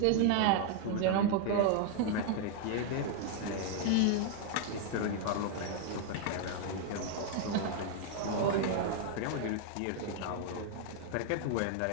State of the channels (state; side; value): different; both; correlation 0.00